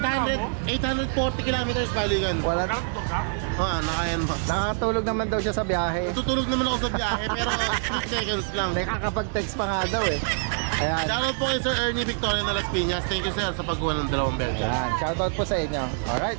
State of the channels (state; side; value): silent; left; 61 dB below the other